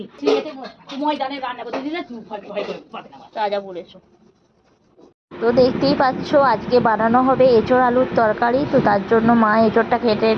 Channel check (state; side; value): identical; both; correlation 1.00